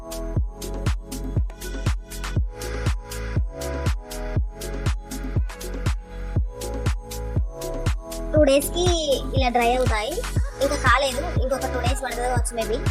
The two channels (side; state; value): both; identical; correlation 1.00